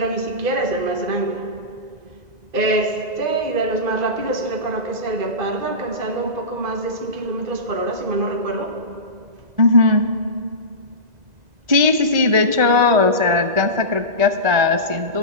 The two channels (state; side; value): late; left; 2.0 ms